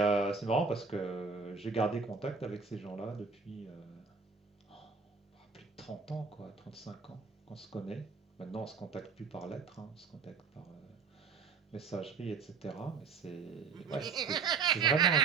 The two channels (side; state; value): left; quieter; 5.3 dB